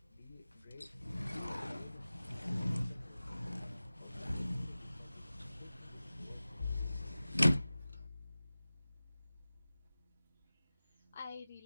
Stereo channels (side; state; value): both; inverted; correlation -0.97